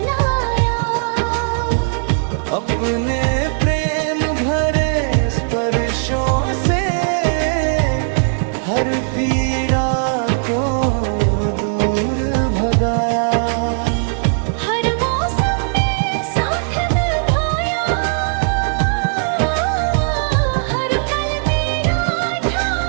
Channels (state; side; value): silent; left; 65 dB below the other